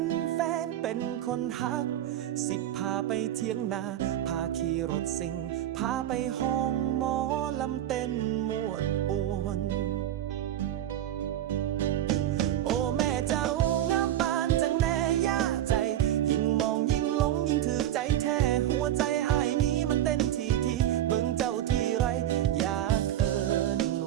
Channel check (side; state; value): left; quieter; 12.1 dB